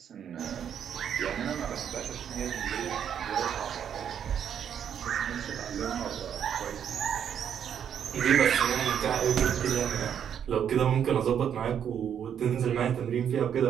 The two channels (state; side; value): quieter; left; 8.7 dB